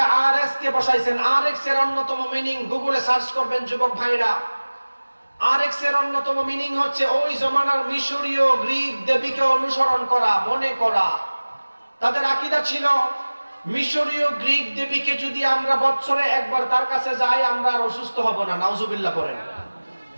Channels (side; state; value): both; inverted; correlation -1.00